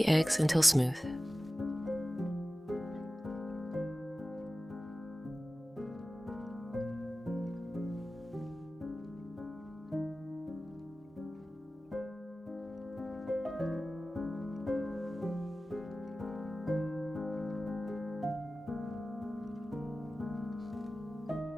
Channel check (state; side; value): normal; both; correlation 0.96